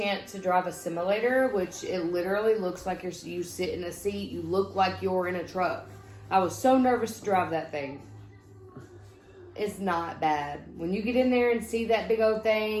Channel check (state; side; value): identical; both; correlation 1.00